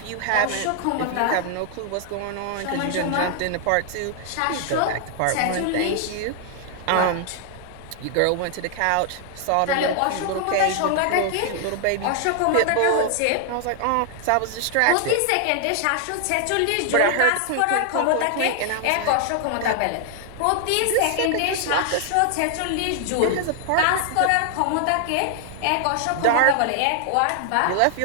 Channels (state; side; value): different; both; correlation 0.00